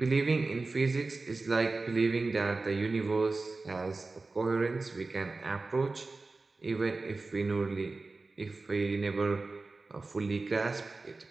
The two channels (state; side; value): quieter; left; 3.6 dB